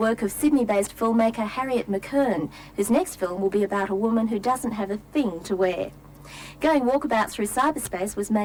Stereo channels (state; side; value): identical; both; correlation 1.00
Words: of Sydney-based filmmaker Harriet McKern, whose next film will be about a woman who doesn't have a thing to wear. Going Walkabout Through Cyberspace was